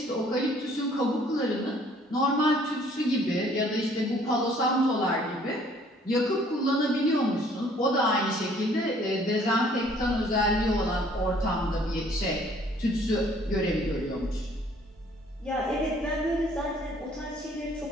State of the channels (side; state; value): both; normal; correlation 0.59